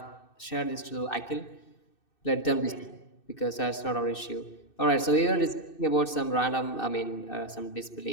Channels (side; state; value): right; late; 2.6 ms